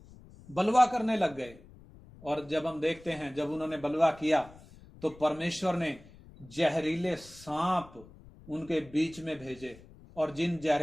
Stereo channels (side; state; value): left; noise; rumble, 21 dB below the sound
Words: बलवा करने लग गए। और जब हम देखते हैं जब उन्होंने बलवा किया तो परमेश्वर ने जहरीले सांप उनके बीच में भेजे, और जिन